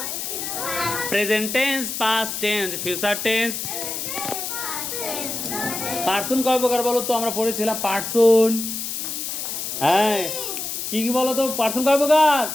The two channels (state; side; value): noise; left; hiss, 4 dB below the sound